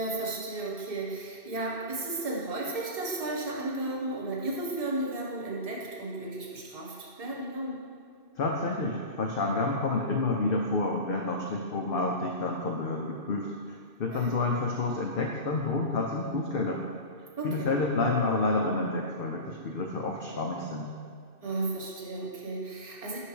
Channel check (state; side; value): late; right; 2.6 ms